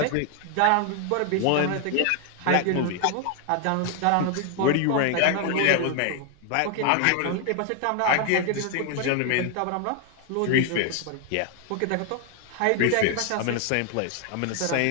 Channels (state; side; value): different; both; correlation 0.00